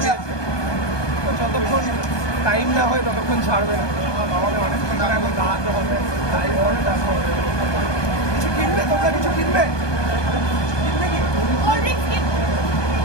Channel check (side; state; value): right; late; 1.2 ms